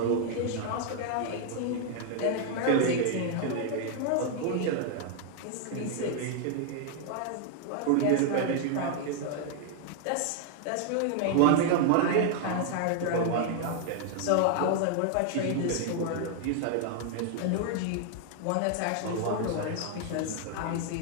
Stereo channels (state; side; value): different; both; correlation 0.00